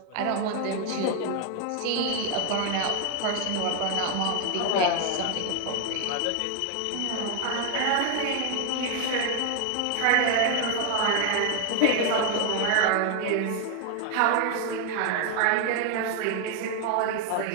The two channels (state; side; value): different; both; correlation 0.01